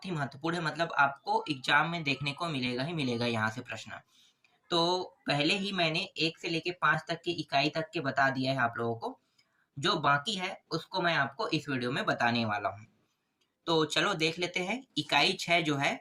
ही महत्वपूर्ण है, मतलब आपको एग्जाम में देखने को मिलेगा ही मिलेगा यहाँ से प्रश्न। तो पहले ही मैंने 1 से लेके 5 तक की इकाई तक के बता दिया है आप लोगों को। जो बाकी है उसको मैं आपको इस वीडियो में बताने वाला हूँ। तो चलो देख लेते हैं। इकाई 6 जो है,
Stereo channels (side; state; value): both; identical; correlation 1.00